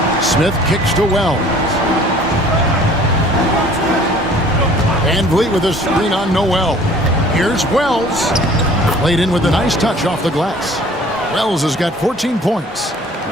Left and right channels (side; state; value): both; normal; correlation 0.51